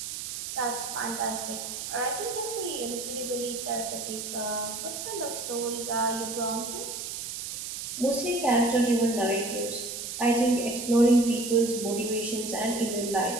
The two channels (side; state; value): right; noise; hiss, 6 dB below the sound